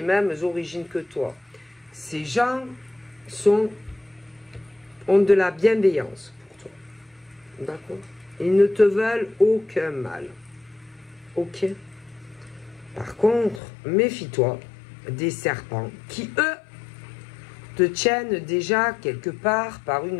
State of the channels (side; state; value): right; drops out; at 13.6 s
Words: mêmes origines que toi. Ces gens ont de la bienveillance pour toi. D'accord? Ils ne te veulent aucun mal. Ok? Par contre, méfie-toi des serpents qui, eux, te tiennent déjà quelque part par